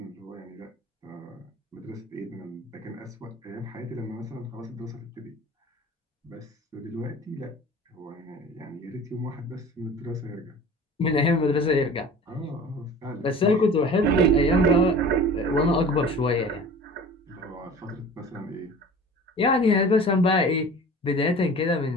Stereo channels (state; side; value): normal; both; correlation 0.41